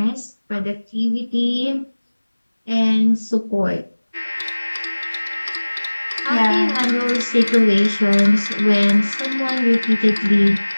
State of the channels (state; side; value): inverted; both; correlation -1.00